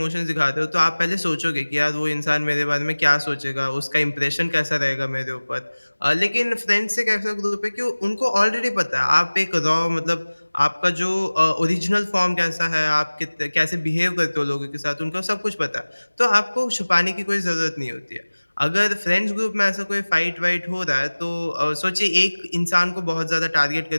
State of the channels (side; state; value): both; inverted; correlation -1.00